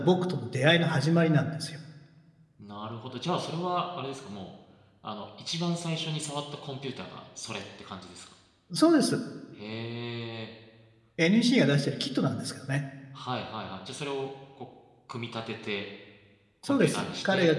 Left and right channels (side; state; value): both; identical; correlation 1.00